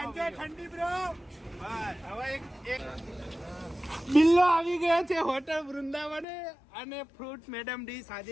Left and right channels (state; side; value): drops out; right; at 6.2 s